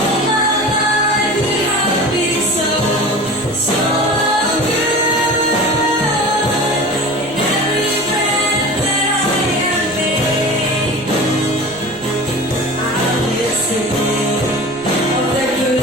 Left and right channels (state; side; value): noise; right; rumble, 22 dB below the sound